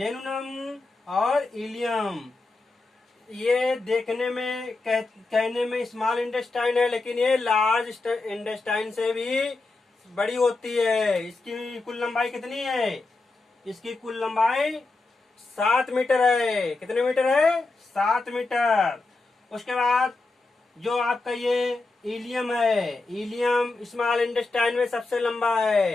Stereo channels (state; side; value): quieter; right; 3.4 dB